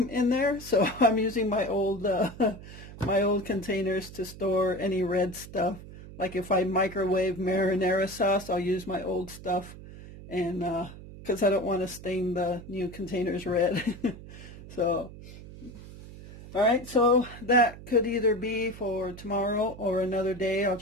in there, so I'm using my old containers to store any red stuff. Like if I microwave marinara sauce, I'll use my old stuff, and because I don't want to stain the new containers red. So, all right, so that could either be for tomorrow or another day. I'll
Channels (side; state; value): right; noise; hum, 15 dB below the sound